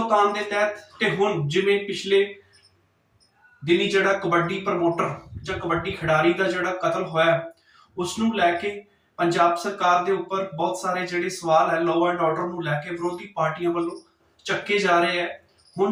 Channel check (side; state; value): both; identical; correlation 1.00